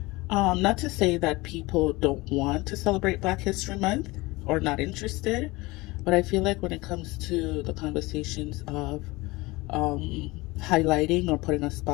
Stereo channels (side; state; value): right; quieter; 22.0 dB